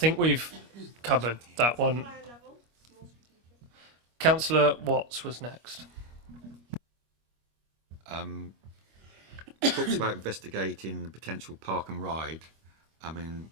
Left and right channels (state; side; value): late; left; 25 ms